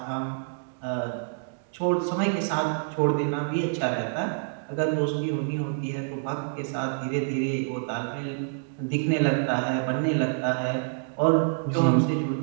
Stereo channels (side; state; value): left; silent; digital silence